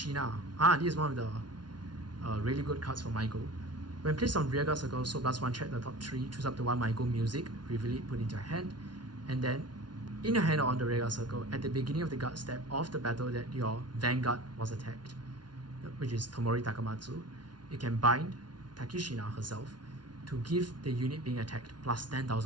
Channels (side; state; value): left; late; 0.70 ms